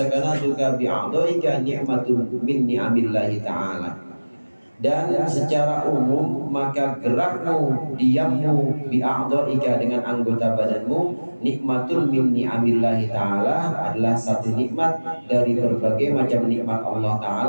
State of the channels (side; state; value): both; inverted; correlation -1.00